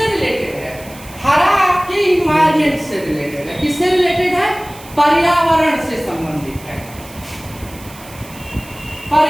रिलेटेड है, हरा आपके इन्वायरमेंट से रिलेटेड है। किससे रिलेटेड है, पर्यावरण से संबंधित है,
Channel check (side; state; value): right; noise; hiss, 19 dB below the sound